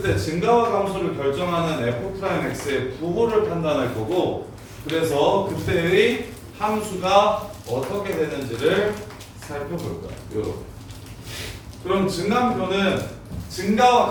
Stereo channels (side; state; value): both; identical; correlation 1.00